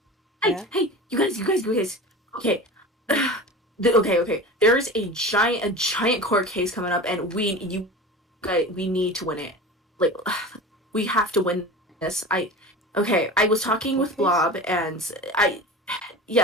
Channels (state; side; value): normal; both; correlation 0.32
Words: Yeah? Hey! You guys! Okay. Yeah? Okay. There is a giant court case coming up, and we need to win it. Like, we have to win this. I was talking with Courtcase? Blob, and